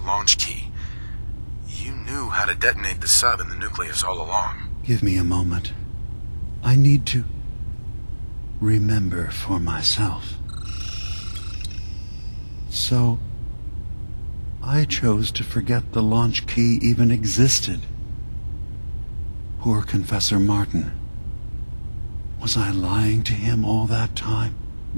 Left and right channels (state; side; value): inverted; both; correlation -1.00